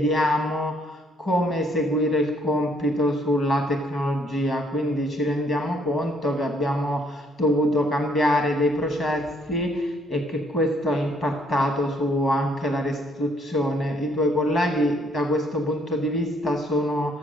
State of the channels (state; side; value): normal; both; correlation 0.67